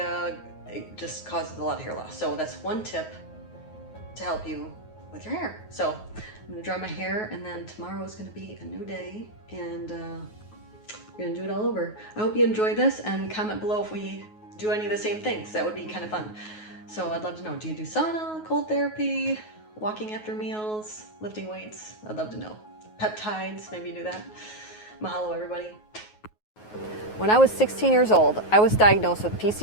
it just causes a lot of hair loss. So that's one tip to help you with your hair. So I'm gonna dry my hair, and then tomorrow is gonna be a new day, and we're gonna do it all over. I hope you enjoy this, and comment below if we do any of the same things. That would be kind of fun. So I'd love to know, do you do sauna, cold therapy, walking after meals, lifting weights? I'd love to know. Peptides, maybe you do that. Mahalo, everybody. When I was 16 years old, I was diagnosed with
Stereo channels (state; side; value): late; right; 9.4 ms